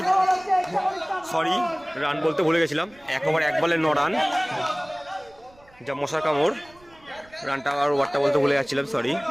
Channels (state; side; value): noise; right; rumble, 28 dB below the sound